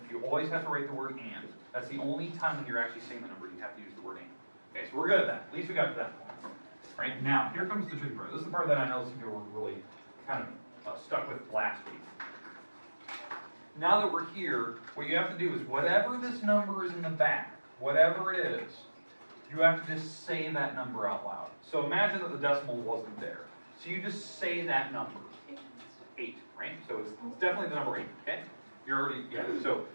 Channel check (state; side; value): inverted; both; correlation -1.00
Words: You always have to write the word and. That's the only time when you're actually saying the number you have to use the word and. Okay, so we're good at that. At least we got to that point. Right, now, here comes the tricky part. This is the part that I know some people were really kind of stuck with last week. Now that we're here, what you have to do is whatever this number is in the back, whatever it is, you have to just say that number out loud. So imagine that the decimal wasn't there. So you just say that number. 8, right? So it's definitely the number 8, okay? You're already, yeah, so